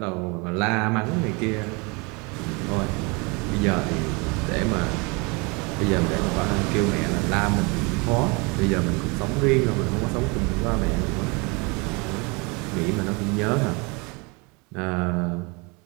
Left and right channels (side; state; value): left; quieter; 29.3 dB